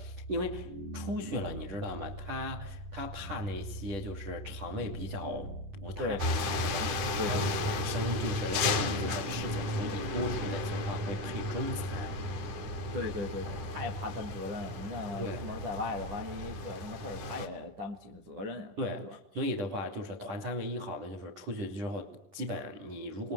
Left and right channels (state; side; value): late; left; 10 ms